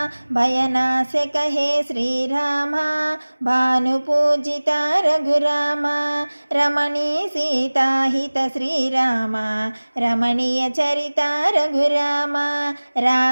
భయనాశక హే శ్రీరామ భాను పూజిత రఘురామ రమణీ సీతాహిత శ్రీరామ రమణీయ చరిత రఘురామ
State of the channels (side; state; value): both; inverted; correlation -1.00